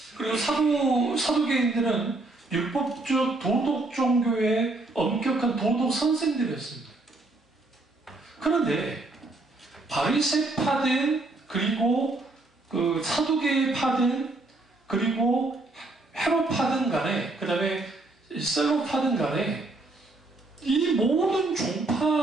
그리고 사두개인들은 율법적 도덕 종교의 엄격한 도덕 선생들이었습니다. 그런데 바리새파든 그리고 그 사두개파든 그리고 헤롯파든 간에 그 다음에 셀로파든 간에 이 모든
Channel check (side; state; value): left; quieter; 3.0 dB